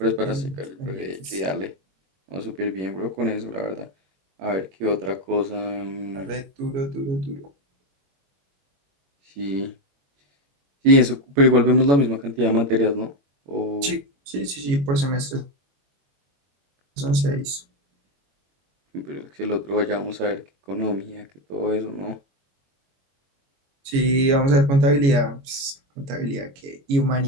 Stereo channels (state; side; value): late; left; 22 ms